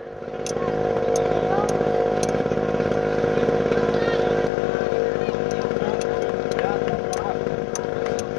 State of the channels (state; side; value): drops out; right; at 4.5 s